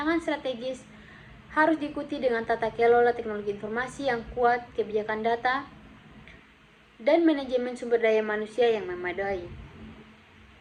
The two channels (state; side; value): identical; both; correlation 1.00